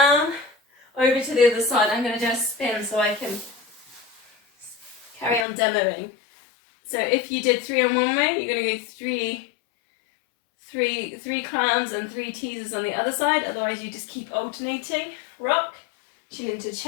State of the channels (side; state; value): right; drops out; at 5.5 s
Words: over to the other side. I'm going to do a spin so I can carry on demoing. So if you did 3 on one way, you're going to go 3 clams and 3 teasers on the other side. Otherwise, you just keep alternating. Rock, chin into